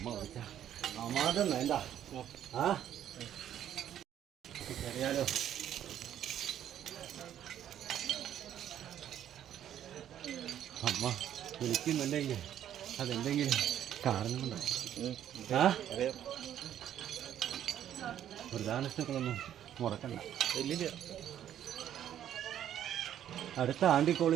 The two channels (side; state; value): left; quieter; 10.7 dB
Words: വിളിച്ച അമ്മാതെ വേണ്ട. അറിയാലോ അമ്മ വിളിക്കുന്നുണ്ടെങ്കിൽ അതെന്തെങ്കിലും കാരണം കൊണ്ടാണ്. പ്രധാനങ്ങളൊന്നും മുടക്കണ്ട. അടുത്ത